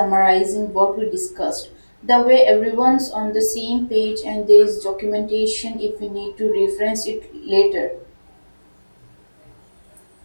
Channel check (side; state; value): both; inverted; correlation -1.00